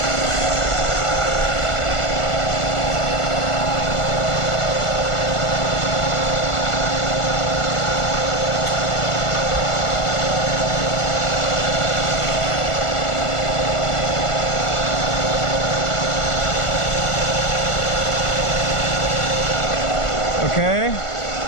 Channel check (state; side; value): late; right; 1.4 ms